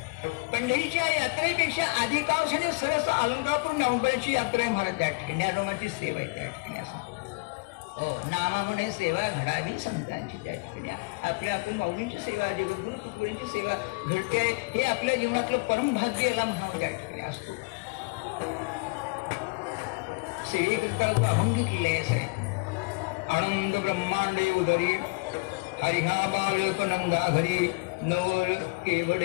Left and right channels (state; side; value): quieter; right; 29.8 dB